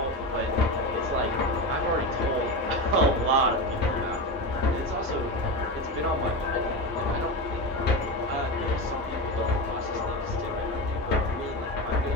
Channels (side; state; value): both; normal; correlation 0.20